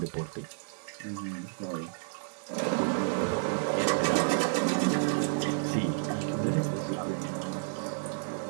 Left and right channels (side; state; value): left; silent; 57 dB below the other